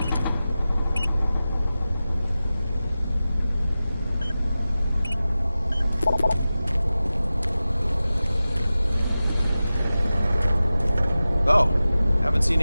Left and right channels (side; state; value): both; inverted; correlation -0.95